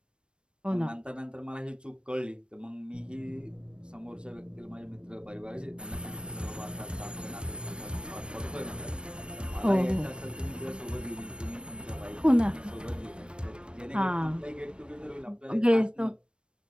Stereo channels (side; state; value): left; late; 0.055 ms